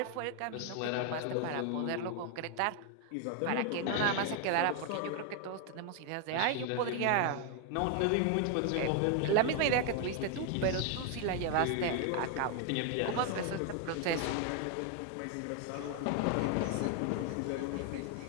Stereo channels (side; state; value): both; different; correlation 0.01